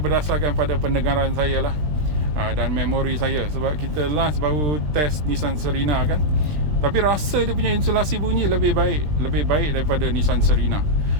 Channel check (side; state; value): left; late; 20 ms